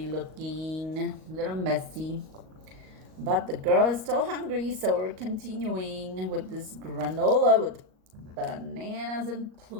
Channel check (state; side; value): late; left; 38 ms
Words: looking, a little messy. But the girl is still hungry, so we're continuing with this granola with bananas and